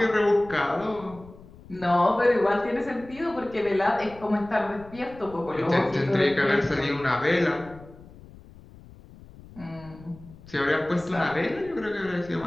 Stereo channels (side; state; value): left; noise; rumble, 20 dB below the sound